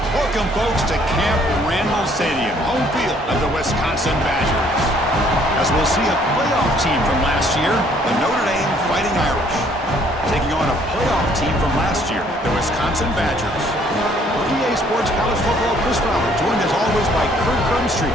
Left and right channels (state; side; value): normal; both; correlation 0.62